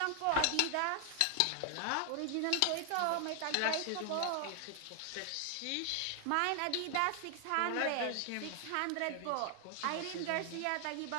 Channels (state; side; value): different; both; correlation 0.00